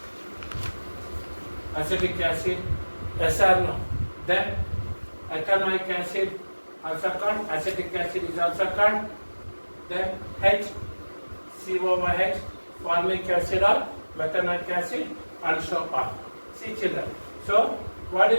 SRNO. Then ethanoic acid, also called acetic acid, is also called. Then HCOOH, formic acid or methanoic acid, and so on. See children. So, what do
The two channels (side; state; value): both; inverted; correlation -1.00